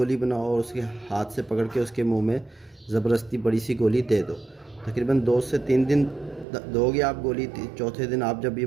बनाओ और उसके हाथ से पकड़ के उसके मुंह में ज़बरदस्ती बड़ी सी गोली दे दो। तकरीबन 2 से 3 दिन दोगे आप गोली, चौथे दिन आप जब ये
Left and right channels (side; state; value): left; drops out; at 6.5 s